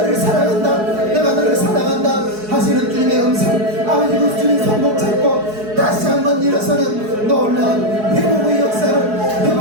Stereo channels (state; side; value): late; left; 4.7 ms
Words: 사랑한다 내가 너를 사랑한다 하시는 주님의 음성 아버지 그 주님 손목 잡고 다시 한번 일어서는 놀라운 회복의 역사를